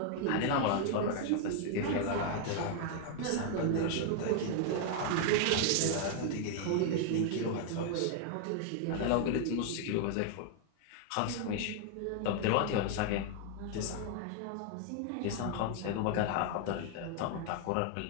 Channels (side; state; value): both; different; correlation 0.00